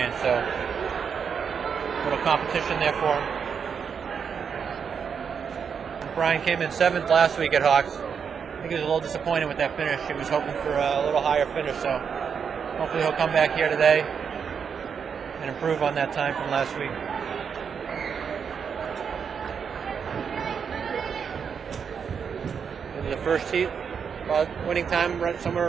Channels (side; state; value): left; quieter; 6.7 dB